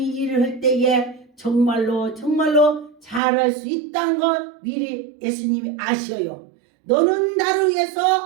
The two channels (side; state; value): left; drops out; at 3.2 s